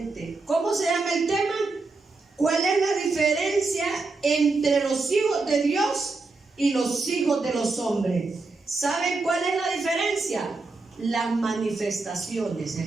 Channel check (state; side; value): quieter; left; 3.7 dB